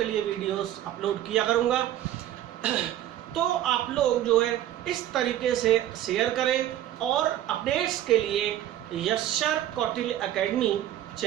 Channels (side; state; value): left; quieter; 12.6 dB